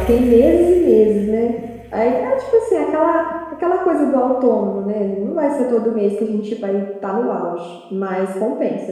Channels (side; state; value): both; identical; correlation 1.00